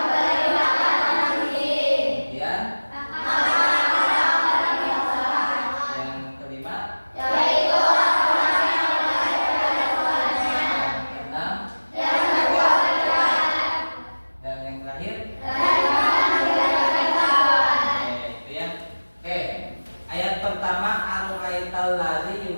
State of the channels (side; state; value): both; inverted; correlation -1.00